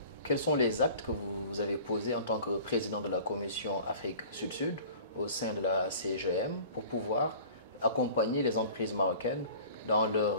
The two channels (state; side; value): inverted; both; correlation -0.44